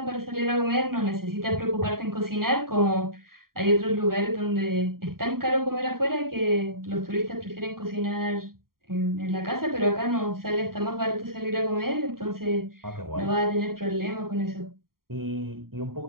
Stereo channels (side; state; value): left; late; 0.93 ms